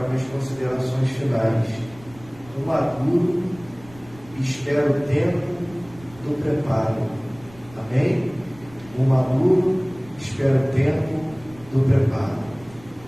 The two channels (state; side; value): noise; right; rumble, 22 dB below the sound